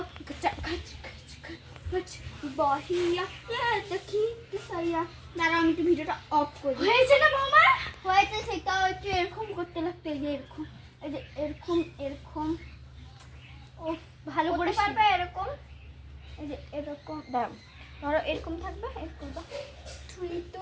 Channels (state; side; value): identical; both; correlation 1.00